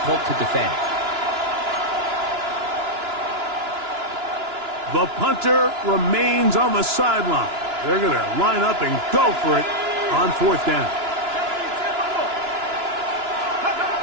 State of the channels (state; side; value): late; left; 2.9 ms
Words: to defend. The punter remains on the sideline. They're going to line up and go for it on 4th down.